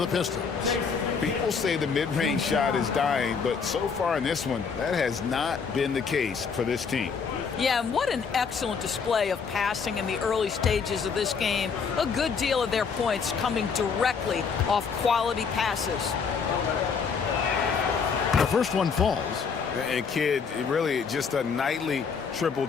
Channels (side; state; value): right; quieter; 5.8 dB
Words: Pistons. People say the mid-range shot is dying, but so far in this one, that has not been the case for this team. Yeah, and what an excellent display of passing in the early stages of this game. A good deal of their points coming directly off quality passes. The first one falls. And Kidd, really just a nightly